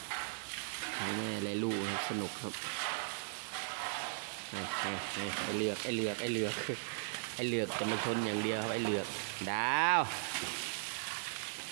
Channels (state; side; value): silent; left; digital silence